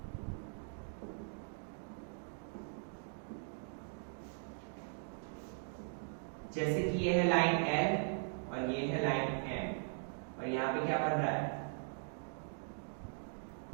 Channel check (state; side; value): silent; left; digital silence